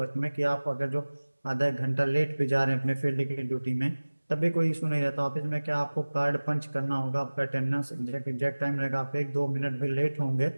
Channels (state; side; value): inverted; both; correlation -1.00